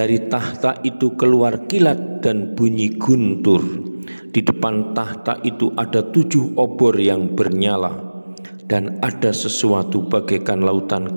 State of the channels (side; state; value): both; inverted; correlation -1.00